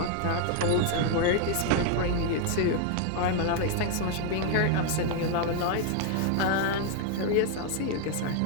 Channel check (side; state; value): both; different; correlation 0.00